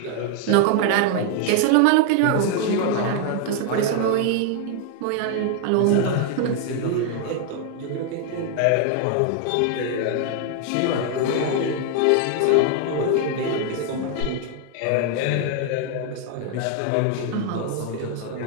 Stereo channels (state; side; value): different; both; correlation 0.00